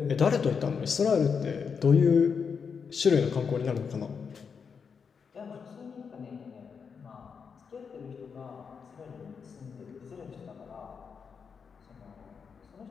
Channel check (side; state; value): right; quieter; 6.1 dB